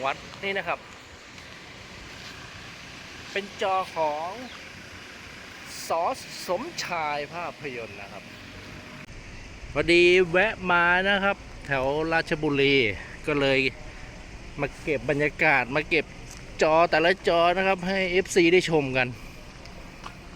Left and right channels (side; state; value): both; identical; correlation 1.00